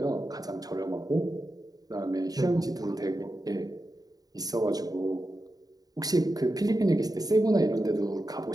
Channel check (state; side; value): late; left; 0.18 ms